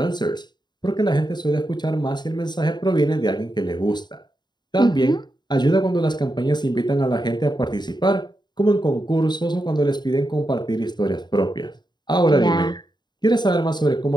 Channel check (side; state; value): right; late; 0.21 ms